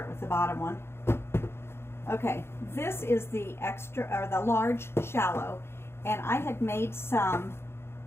with the bottom one. Okay, this is the the large shallow, and I had made some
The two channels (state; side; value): late; right; 0.12 ms